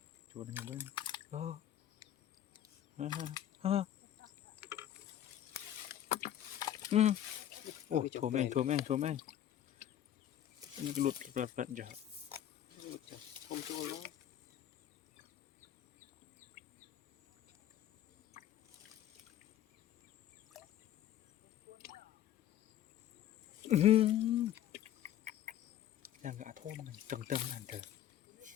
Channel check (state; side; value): quieter; right; 11.4 dB